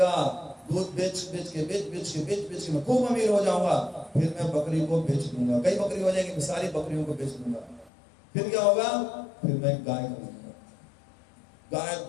दूध बेच के मैं खूब अमीर हो जाऊंगा। फिर मैं बकरी को बेच दूंगा, कई बकरी हो जाएंगी, सारी बकरियों को बेच दूंगा। फिर क्या होगा, फिर मैं गाय खरीदूंगा। गाय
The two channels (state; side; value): drops out; right; at 7.9 s